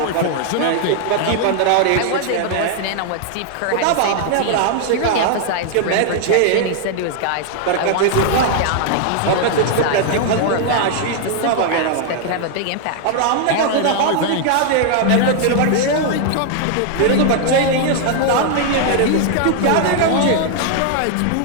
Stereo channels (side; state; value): both; different; correlation 0.00